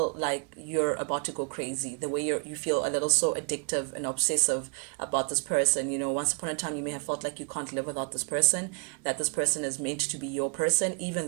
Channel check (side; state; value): left; quieter; 37.6 dB